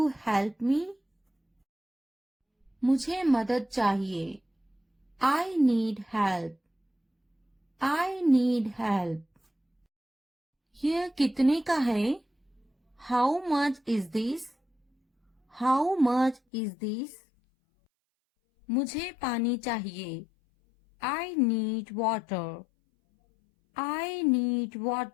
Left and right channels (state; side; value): drops out; right; at 16.4 s